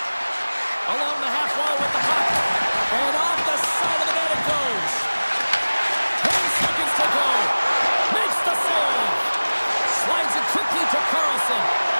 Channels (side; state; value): both; inverted; correlation -1.00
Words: Along the half wall with the puck. And off the side of the net it goes. 10 seconds to go. Makes the save. Slides it quickly to Carlson.